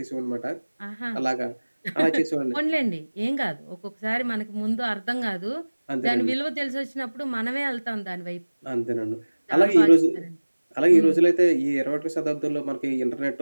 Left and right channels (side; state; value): both; inverted; correlation -1.00